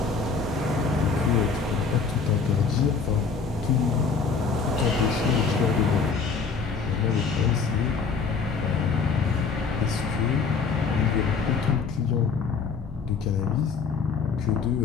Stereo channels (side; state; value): right; quieter; 5.3 dB